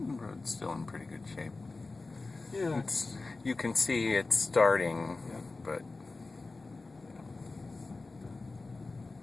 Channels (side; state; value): right; quieter; 3.6 dB